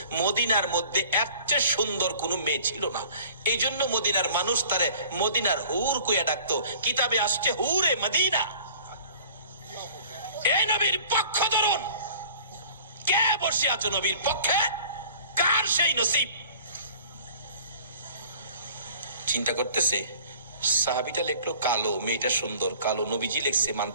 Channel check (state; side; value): inverted; both; correlation -0.48